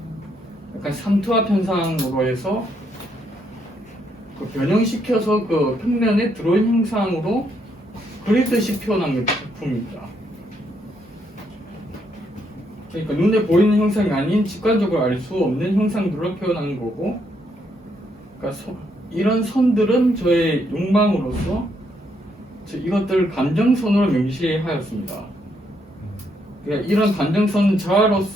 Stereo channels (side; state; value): both; normal; correlation 0.75